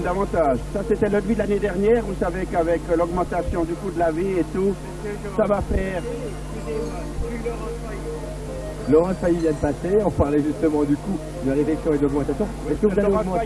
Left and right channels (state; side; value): identical; both; correlation 1.00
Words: Ça, c'était le devis de l'année dernière. Vous savez qu'avec l'augmentation du coût de la vie et tout, ça va faire... Laurent Failly vient de passer, on parlait justement du coût de la réflexion et de l'augmentation. Est-ce que vous allez Laurent augmenter...